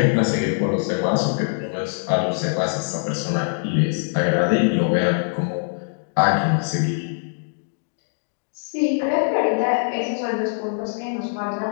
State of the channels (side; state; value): right; silent; digital silence